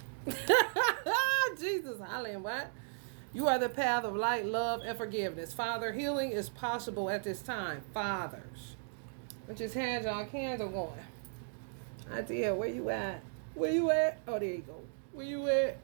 Jesus, hollering, what? You are the path of light, love, and forgiveness. Father, healing is possible at this time. Fathers. Put your hands on candle going. I did. Where you at? Where you at? Oh, there you go. Where you at?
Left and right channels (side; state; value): left; silent; digital silence